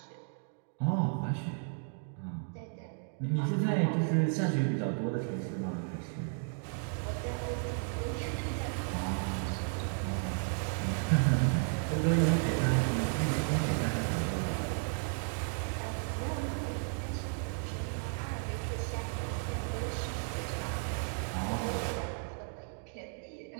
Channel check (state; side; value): silent; left; 55 dB below the other